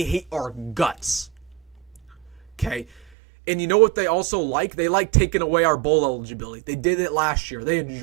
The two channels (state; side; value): drops out; left; at 3.0 s